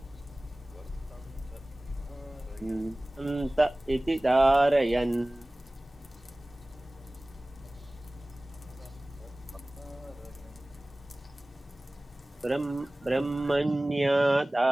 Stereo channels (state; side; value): normal; both; correlation 0.98